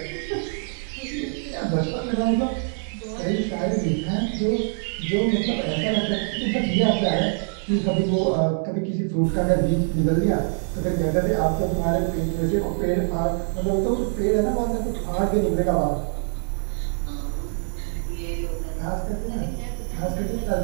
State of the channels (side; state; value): left; silent; 56 dB below the other